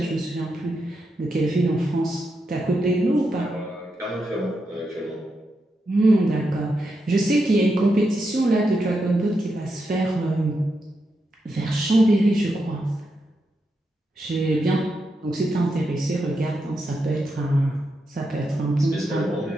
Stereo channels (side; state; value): both; normal; correlation 0.85